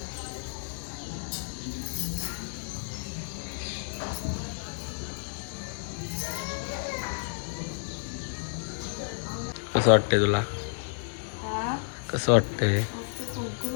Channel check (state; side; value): silent; right; digital silence